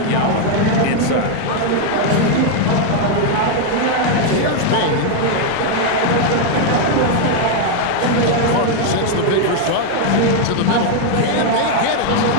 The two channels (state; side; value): different; both; correlation 0.00